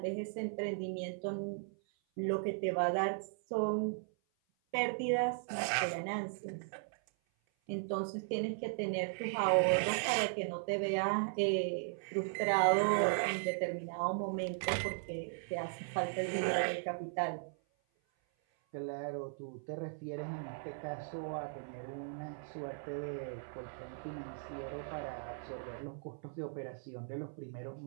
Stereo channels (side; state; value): left; silent; 53 dB below the other